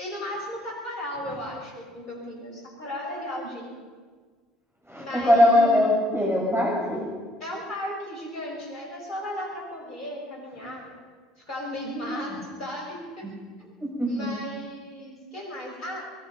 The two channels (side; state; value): both; normal; correlation 0.66